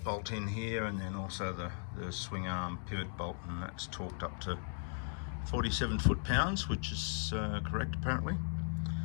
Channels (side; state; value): right; silent; 53 dB below the other